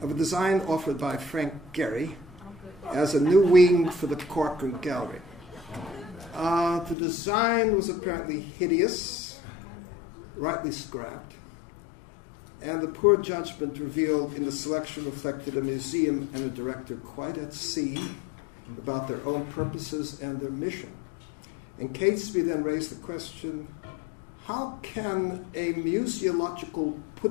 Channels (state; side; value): drops out; right; at 7.0 s